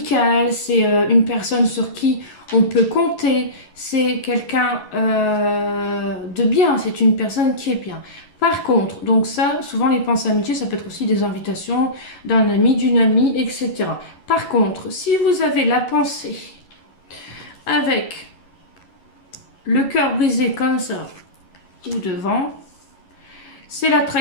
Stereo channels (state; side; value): late; right; 11 ms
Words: C'est une personne sur qui on peut compter. C'est quelqu'un de bien. C'est une personne qui est bien. Par contre, donc ça, souvent les pensées amitiés, ça peut être aussi des invitations d'un ami, d'une amie, etc. Par contre, si vous avez la pensée avec le cœur brisé comme ça ou devant, c'est la